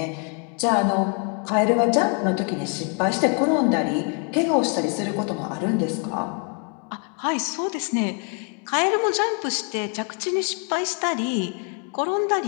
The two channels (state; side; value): quieter; right; 37.6 dB